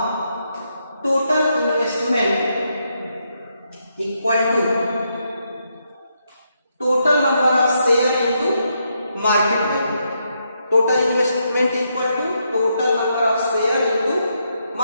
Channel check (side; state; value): both; inverted; correlation -0.80